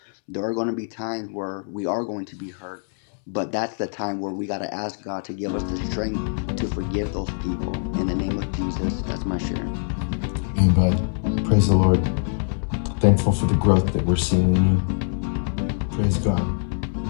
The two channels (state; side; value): silent; right; 63 dB below the other